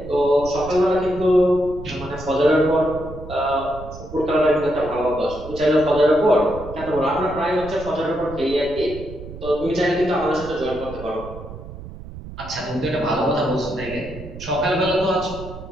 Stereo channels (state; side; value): noise; right; rumble, 13 dB below the sound